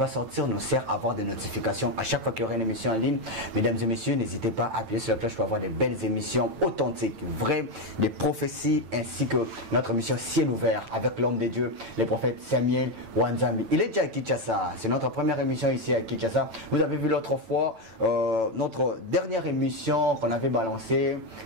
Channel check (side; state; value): left; late; 9.0 ms